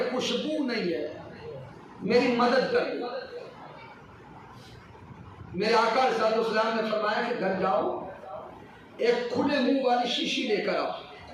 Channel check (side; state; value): both; identical; correlation 1.00